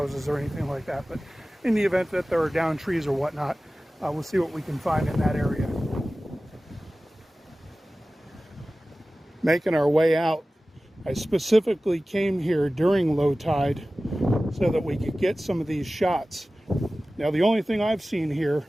or anything like that. But in the event that there are down trees or whatnot, we'll see what we can find in that area. Making our way out, I specifically came here during low tide so that we could get some of these shots. Now, the only thing I've seen here,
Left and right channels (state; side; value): normal; both; correlation 0.96